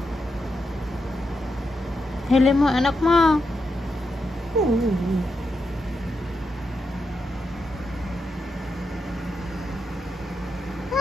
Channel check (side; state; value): both; normal; correlation 0.85